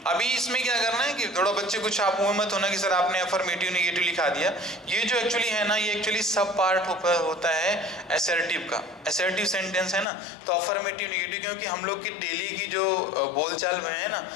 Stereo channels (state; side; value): drops out; right; at 10.1 s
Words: अभी इसमें क्या करना है कि थोड़ा बच्चे कुछ आप वो मत होना कि सर आपने अफर्मेटिव नेगेटिव लिखा दिया। ये जो एक्चुअली है ना, ये एक्चुअली सब पार्ट होता है असर्टिव का। असर्टिव सेंटेंस है ना, तो अफर्मेटिव नेगेटिव, क्योंकि हम लोग की डेली की जो बोलचाल में है ना,